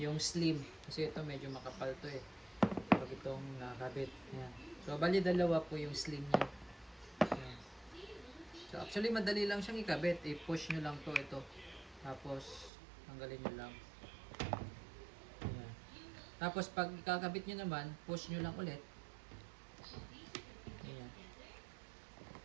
slim kasi ito medyo makapal to eh. Pag itong nakakabit. Yan. So bali dalawa po yung slim niya. Yan. So actually madali lang siyang ikabit. I-push nyo lang to ito. Tapos tanggalin nyo lang. Tapos pag kakabit nyo naman, push nyo lang ulit. Ayan.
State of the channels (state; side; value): drops out; left; at 12.7 s